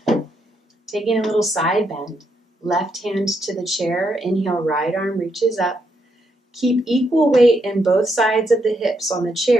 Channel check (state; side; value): normal; both; correlation 0.79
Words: Taking a little side bend. Left hand to the chair. Inhale, right arm reaches up. Keep equal weight in both sides of the hips on the